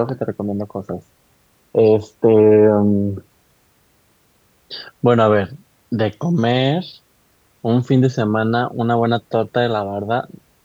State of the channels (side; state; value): both; identical; correlation 1.00